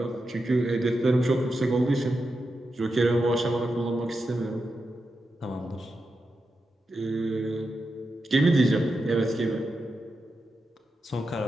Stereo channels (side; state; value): both; normal; correlation 0.88